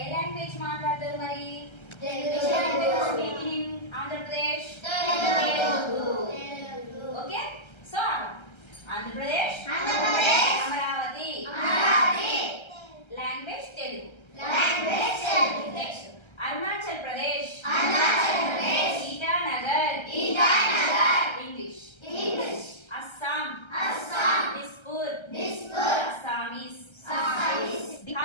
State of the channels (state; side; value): late; right; 1.3 ms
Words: ఏ లాంగ్వేజ్ మాట్లాడతారు మరి? Telugu. Andhra Pradesh okay. So Andhra Pradesh Amaravati language Telugu. Next Arunachal Pradesh Itanagar English. Assam Dispur Assamese.